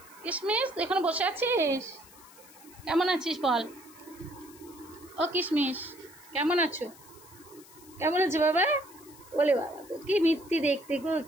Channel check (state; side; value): noise; left; hiss, 22 dB below the sound